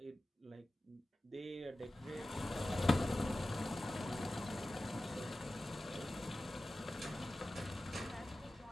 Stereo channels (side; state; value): both; normal; correlation 0.95